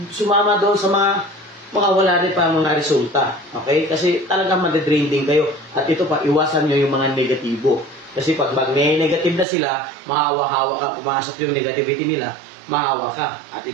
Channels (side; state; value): left; drops out; at 9.5 s